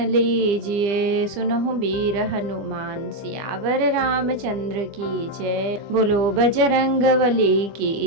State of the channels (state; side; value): late; left; 25 ms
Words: लीजिए, सुनहु वीर हनुमान सियावर रामचंद्र की जय। बोलो बजरंग बली